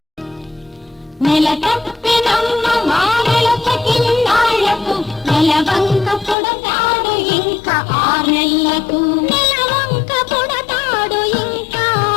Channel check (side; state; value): right; drops out; at 6.4 s